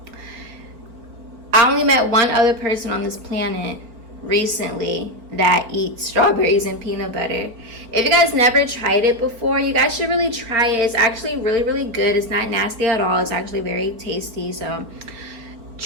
I only met one other person on this planet recently that eats strawberries and peanut butter. If you guys never tried it before, you guys should really try it. It's actually really, really good. It's not nasty at all. It's actually very tasty. So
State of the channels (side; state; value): left; late; 4.4 ms